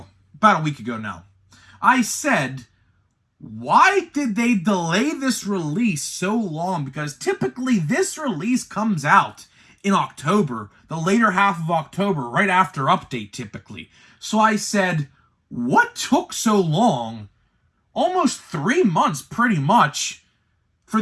about a week ago now. I said, why did they delay this release so long? Because typically this release comes out in October, the later half of October, right after update typically. So I said, what took so long, almost 3 months pretty much, for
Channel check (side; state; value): both; identical; correlation 1.00